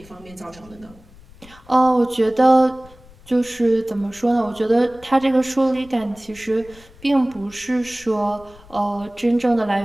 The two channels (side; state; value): left; noise; rumble, 24 dB below the sound